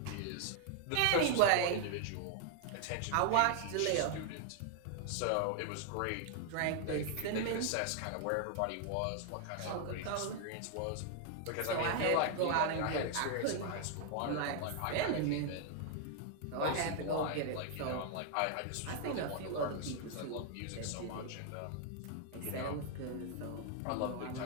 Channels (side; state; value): both; different; correlation 0.00